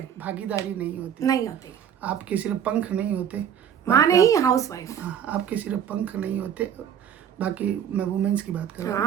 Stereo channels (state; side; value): quieter; left; 9.0 dB